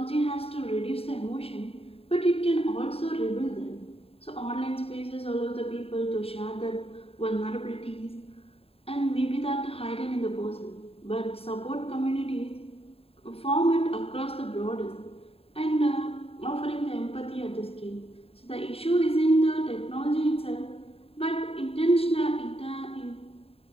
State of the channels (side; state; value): right; late; 0.28 ms